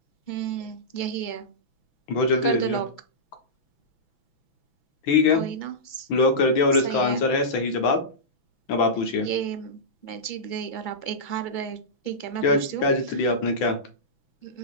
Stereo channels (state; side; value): late; right; 6.0 ms